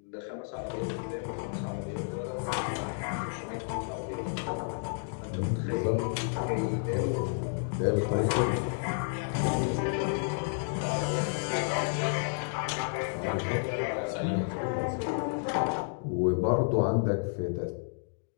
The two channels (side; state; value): right; silent; digital silence